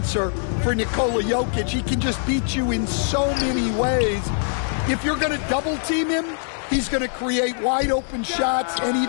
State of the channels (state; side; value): silent; right; 61 dB below the other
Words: for Nikola Jokic. He can just beat you in so many ways. If you're going to double team him, he's going to create wide open shots and